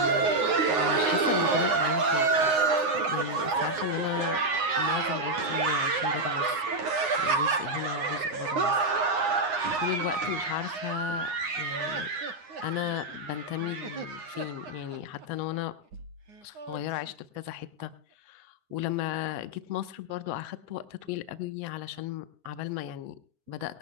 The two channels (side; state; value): left; late; 9.6 ms